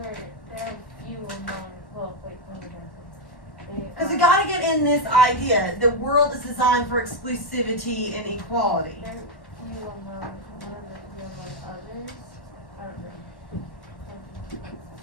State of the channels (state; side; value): late; right; 1.1 ms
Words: there are few among, well, wait, let me go. Because we got to get in this idea. The world is designed for exclusivity and equality. There are few among, one of the few among others. I don't know.